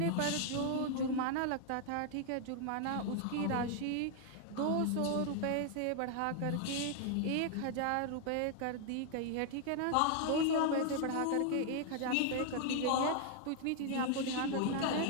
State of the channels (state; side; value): different; both; correlation 0.00